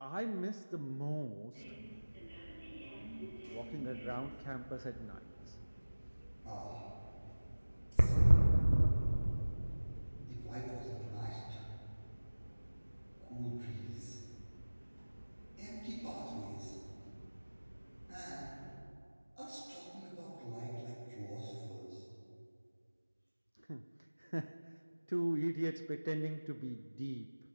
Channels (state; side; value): inverted; both; correlation -1.00